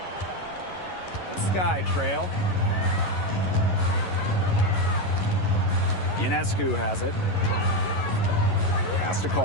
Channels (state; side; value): late; right; 11 ms